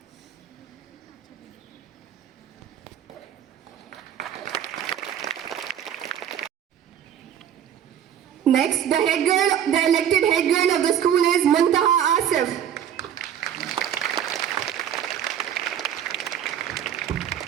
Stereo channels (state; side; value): quieter; left; 9.6 dB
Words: Next, the elected head girl of the school is Muntaha Asif.